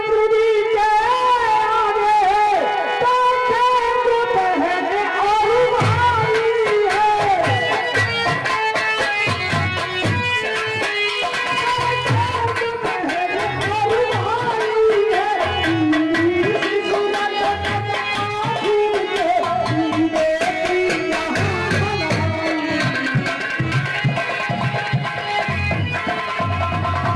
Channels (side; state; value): both; identical; correlation 1.00